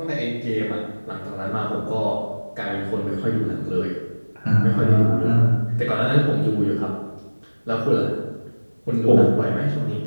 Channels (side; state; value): both; inverted; correlation -1.00